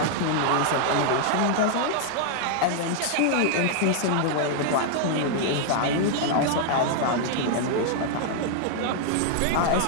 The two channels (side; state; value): both; different; correlation 0.00